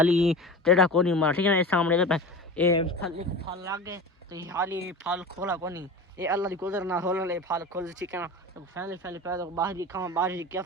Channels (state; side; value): normal; both; correlation 0.31